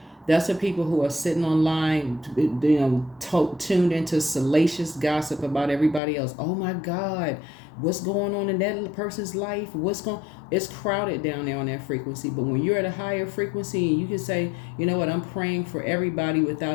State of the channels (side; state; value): right; drops out; at 6.0 s